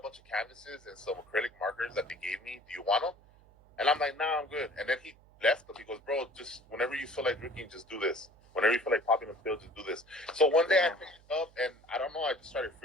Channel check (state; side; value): noise; right; hum, 27 dB below the sound